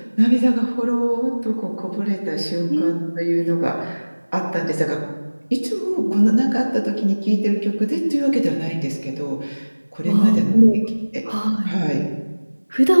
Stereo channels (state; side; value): inverted; both; correlation -1.00